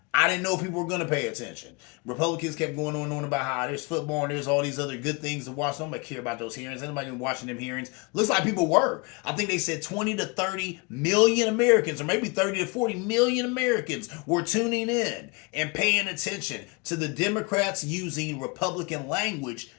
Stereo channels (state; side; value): quieter; right; 29.4 dB